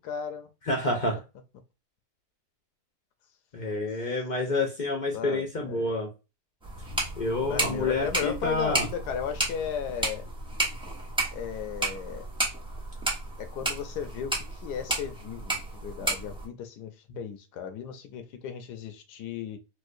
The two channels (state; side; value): normal; both; correlation 0.06